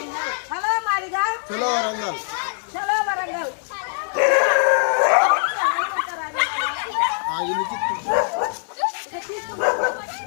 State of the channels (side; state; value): right; silent; digital silence